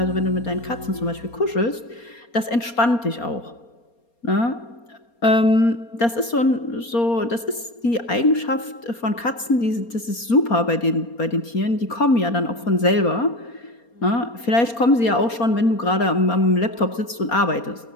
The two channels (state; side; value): late; right; 4.3 ms